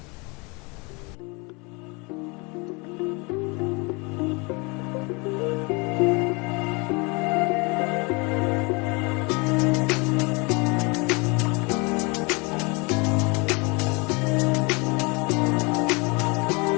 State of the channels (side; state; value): right; quieter; 29.0 dB